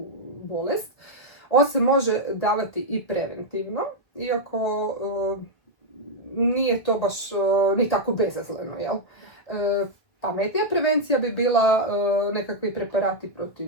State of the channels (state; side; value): late; right; 2.1 ms